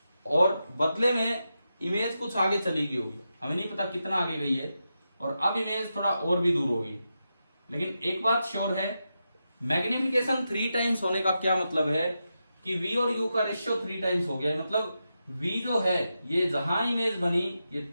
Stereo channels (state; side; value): inverted; both; correlation -0.88